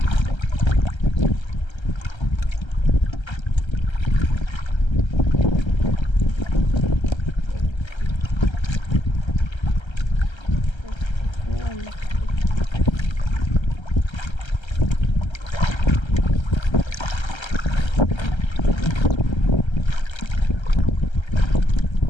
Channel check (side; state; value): right; late; 1.3 ms